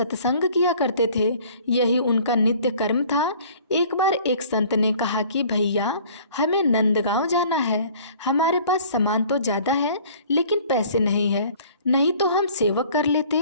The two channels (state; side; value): inverted; both; correlation -0.52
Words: किया करते थे। यही उनका नित्य कर्म था। एक बार एक संत ने कहा कि भैया, हमें नंदगांव जाना है। हमारे पास सामान तो ज़्यादा है लेकिन पैसे नहीं है, नहीं तो हम सेवक कर लेते।